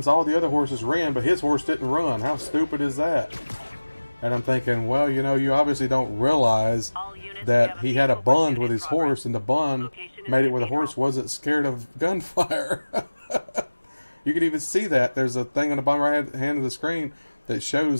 all the other horses ran, but his horse didn't run. How stupid is that? And I'm thinking, well, you know, you obviously don't realize that he had a bond with his horse, and the bond made it where the horse wasn't scared of gunfire. You can even see that. There's a thing on the bottom right hand of the screen that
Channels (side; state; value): both; inverted; correlation -1.00